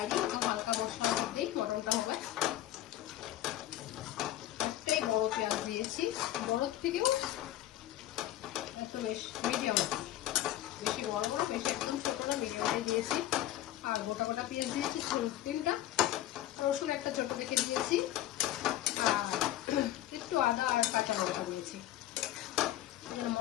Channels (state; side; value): quieter; right; 13.7 dB